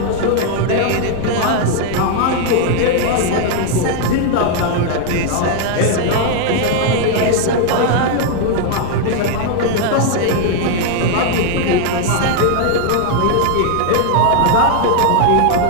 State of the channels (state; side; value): different; both; correlation 0.00